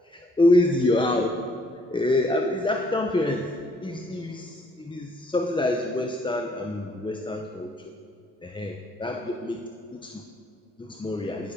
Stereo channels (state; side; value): normal; both; correlation 0.65